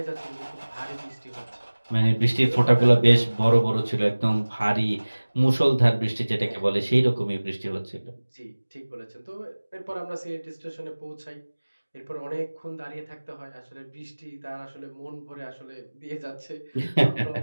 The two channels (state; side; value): inverted; both; correlation -1.00